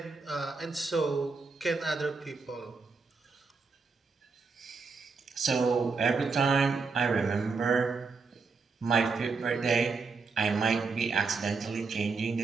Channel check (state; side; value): quieter; left; 4.5 dB